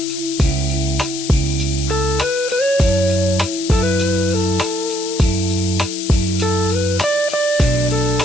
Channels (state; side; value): noise; left; hiss, 8 dB below the sound